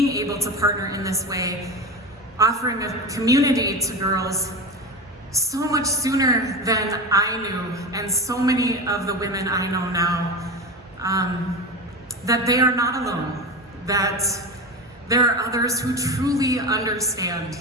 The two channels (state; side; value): normal; both; correlation 0.25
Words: able to partner in this way, offering a community to girls so much sooner than I knew, and so many of the women I know now, that they are not alone, that there are others who truly understand